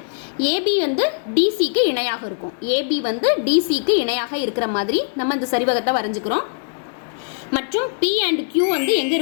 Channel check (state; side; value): silent; right; 57 dB below the other